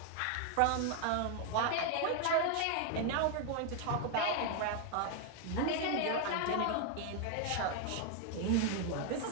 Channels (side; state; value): both; different; correlation 0.00